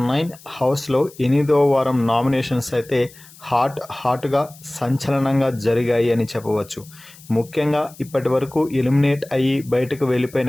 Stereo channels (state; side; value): noise; left; hiss, 22 dB below the sound